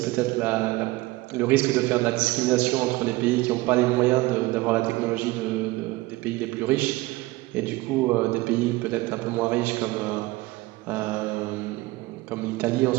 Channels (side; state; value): left; quieter; 20.3 dB